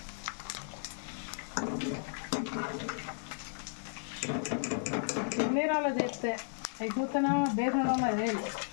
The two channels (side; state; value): right; silent; 55 dB below the other